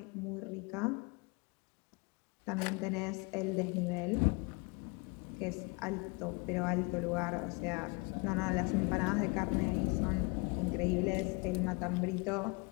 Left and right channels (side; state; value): right; quieter; 30.1 dB